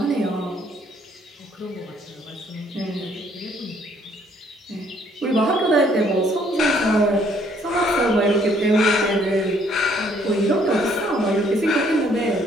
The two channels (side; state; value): both; normal; correlation 0.64